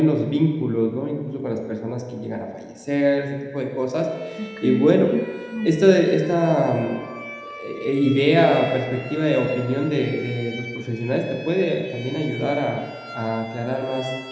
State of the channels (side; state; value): both; identical; correlation 1.00